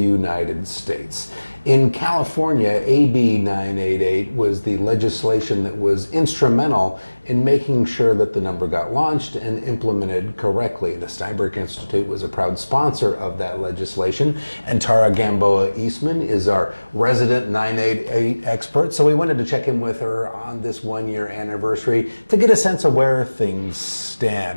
States. In California, AB 988 was the legislation that was instrumental in making sure that the number got launched and implemented correctly. The Steinberg Institute was a proud sponsor of that legislation, and Tara Gamboa Eastman is our resident 988 expert, so we wanted to check in with her on this one-year anniversary to get a sense of where things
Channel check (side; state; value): both; inverted; correlation -1.00